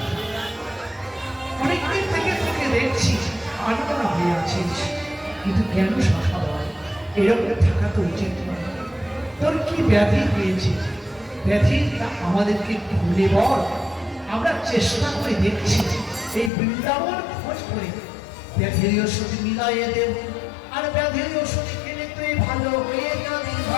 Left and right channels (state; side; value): drops out; right; at 16.5 s